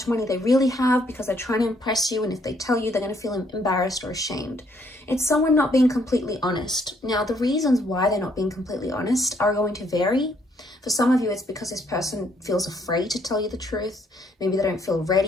money they really have because they're trying to impress you, and if they tell you, they're going to feel embarrassed or ashamed. It's someone not being completely honest. Now, the reasons why they're not being completely honest are going to vary. For some of you, it's because this person feels afraid to tell you the truth. Maybe they don't feel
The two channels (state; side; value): normal; both; correlation 0.69